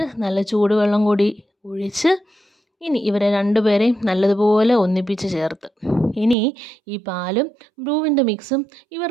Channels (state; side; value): drops out; left; at 6.4 s